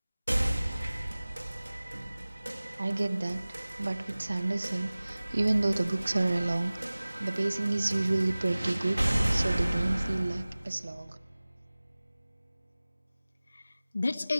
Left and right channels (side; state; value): both; inverted; correlation -0.98